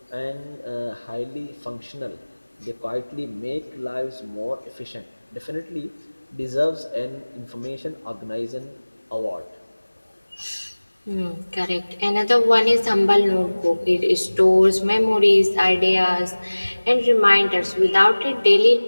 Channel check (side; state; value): both; inverted; correlation -1.00